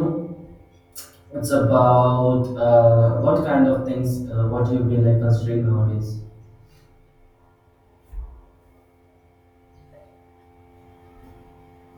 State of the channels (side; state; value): both; identical; correlation 1.00